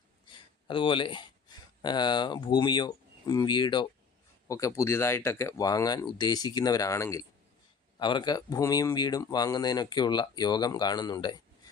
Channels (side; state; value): right; quieter; 5.7 dB